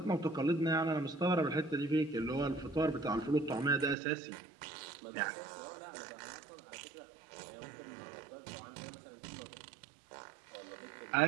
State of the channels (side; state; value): left; drops out; at 4.0 s